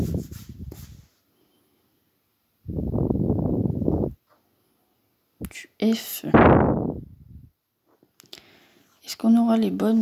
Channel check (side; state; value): both; identical; correlation 1.00